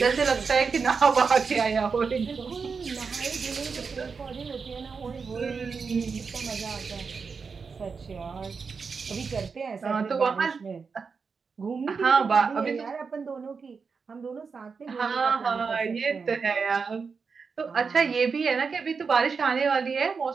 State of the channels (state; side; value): quieter; left; 5.3 dB